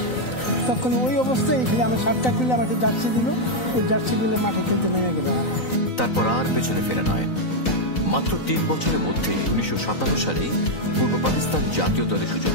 তখন ওই অবস্থায় এখানে আমার শার্টটা খুলে আমাকে জার্সি দিল, ওই জার্সি দিলে মাঠে খেলতে নেমে গেল। তারপর আর পেছনে ফেরা নয়। মাত্র 3 বছরের মধ্যে 1957 সালে পূর্ব পাকিস্তান জাতীয় দলে সুযোগ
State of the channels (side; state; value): right; late; 4.0 ms